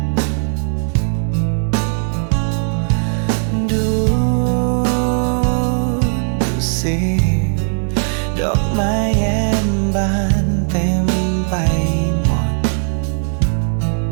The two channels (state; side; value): silent; left; 63 dB below the other